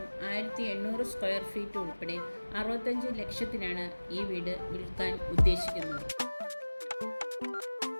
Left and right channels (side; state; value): both; inverted; correlation -1.00